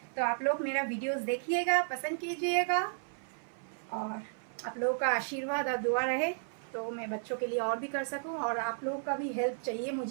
तो आप लोग मेरा वीडियोस देखिएगा, पसंद कीजिएगा, और आप लोगों का आशीर्वाद और दुआ रहे तो मैं बच्चों के लिए और भी कर सकूं, और आप लोगों का भी हेल्प चाहिए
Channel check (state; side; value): silent; left; 55 dB below the other